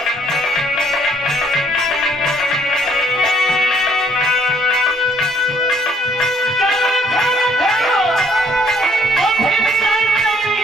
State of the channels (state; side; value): normal; both; correlation 0.65